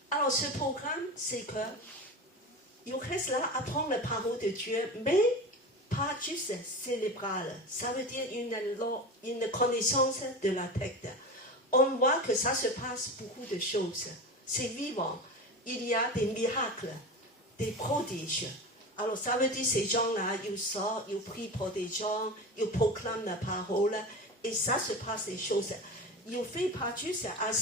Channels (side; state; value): both; normal; correlation 0.27